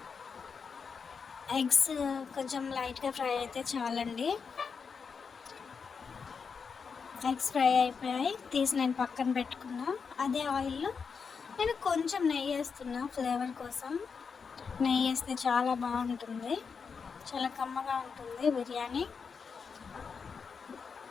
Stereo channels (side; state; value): right; quieter; 5.7 dB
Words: ఎగ్స్ కొంచెం లైట్గా ఫ్రై అయితే చాలండి. ఎగ్స్ ఫ్రై అయిపోయాయి, తీసి నేను పక్కన పెట్టుకున్నా. అదే ఆయిల్లో నేను కొంచెం నెయ్యి వేస్తున్నా. ఫ్లేవర్ కోసం నెయ్యి వేస్తే చాలా బాగుంటుంది, చాలా కమ్మగా ఉంటుంది బిర్యానీ.